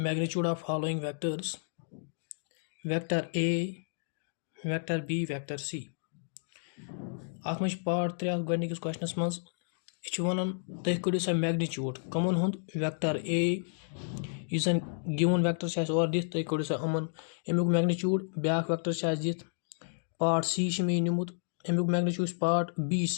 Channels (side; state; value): right; silent; digital silence